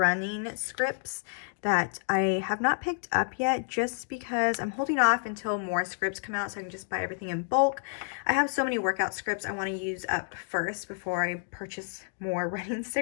scripts that I have not picked up yet just because I'm holding off until more scripts come out so I can just buy everything in bulk. I have so many workout scripts I want to use up first before I purchase more running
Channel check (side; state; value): right; silent; digital silence